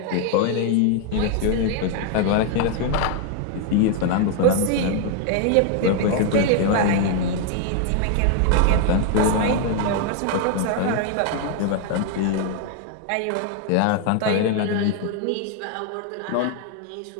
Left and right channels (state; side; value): different; both; correlation 0.00